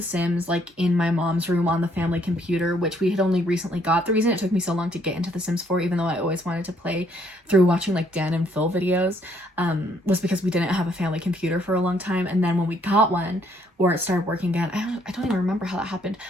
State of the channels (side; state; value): both; normal; correlation 0.68